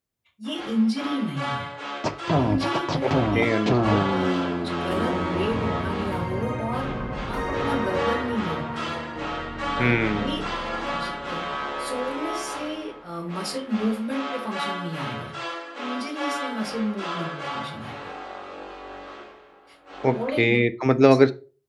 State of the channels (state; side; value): identical; both; correlation 1.00